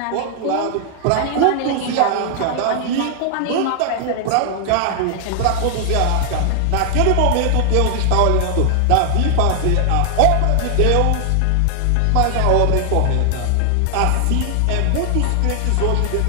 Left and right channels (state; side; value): different; both; correlation 0.00